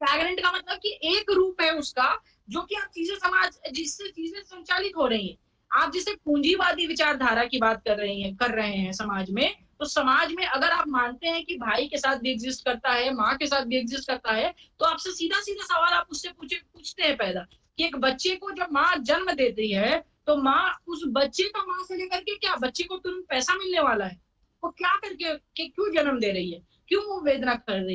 का मतलब कि एक रूप है उसका, जो कि आप चीजें समाज जिससे चीजें संचालित हो रही हैं। आप जिसे पूंजीवादी विचारधारा की बात कर रहे हैं समाज में, तो समाज में अगर आप मानते हैं कि भाई के साथ भी एग्जिस्ट करता है, माँ के साथ भी एग्जिस्ट करता है, तो आपसे सीधा सीधा सवाल आप उससे पूछते हैं पैदा कि एक बच्चे को जब माँ जन्म देती है, तो माँ उस बच्चे का माँ से लेकर के क्या बच्चे को तुरंत पैसा मिलने वाला है? वो क्या करके कि क्यों जन्म दे रही है, क्यों वो वेदना कर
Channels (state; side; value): identical; both; correlation 1.00